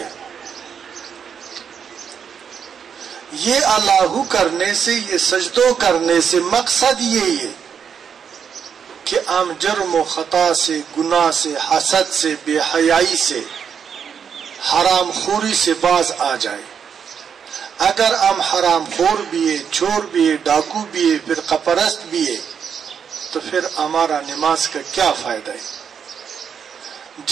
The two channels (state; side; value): quieter; left; 7.3 dB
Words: یہ اللہ کرنے سے، یہ سجدوں کرنے سے مقصد یہی ہے کہ ہم جرم و خطا سے، گناہ سے، حسد سے، بے حیائی سے، حرام خوری سے باز آ جائے. اگر ہم حرام خور بھی ہے، چور بھی ہے، ڈاکو بھی ہے، فرقہ پرست بھی ہے، تو پھر ہمارا نماز کا کیا فائدہ ہے؟